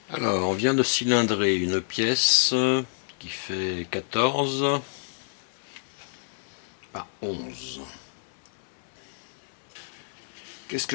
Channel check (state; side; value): silent; right; digital silence